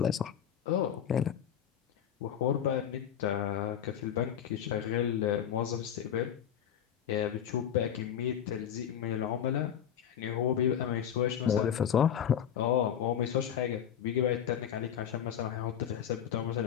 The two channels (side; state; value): right; quieter; 9.3 dB